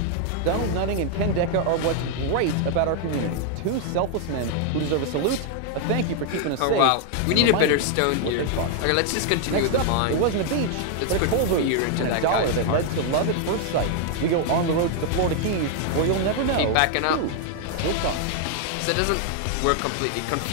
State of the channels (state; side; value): different; both; correlation 0.00